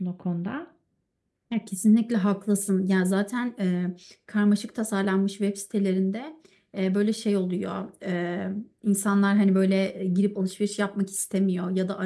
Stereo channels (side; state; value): both; identical; correlation 1.00